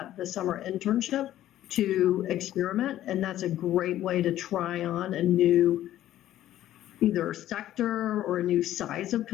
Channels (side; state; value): right; quieter; 13.1 dB